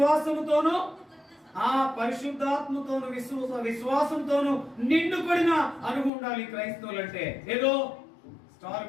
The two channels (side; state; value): right; drops out; at 6.1 s